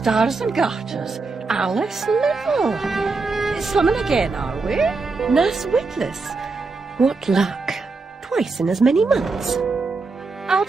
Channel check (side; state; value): left; quieter; 4.0 dB